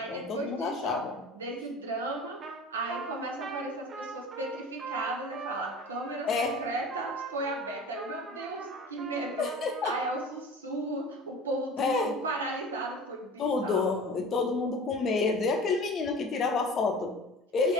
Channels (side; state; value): both; normal; correlation 0.39